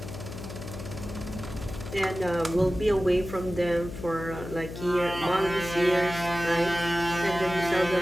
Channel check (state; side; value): noise; left; hum, 10 dB below the sound